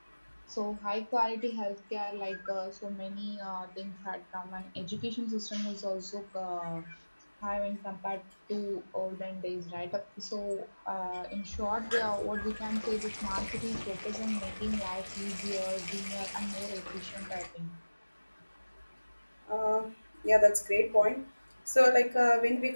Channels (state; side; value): inverted; both; correlation -1.00